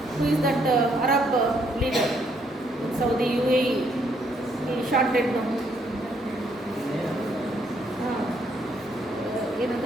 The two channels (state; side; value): normal; both; correlation 0.71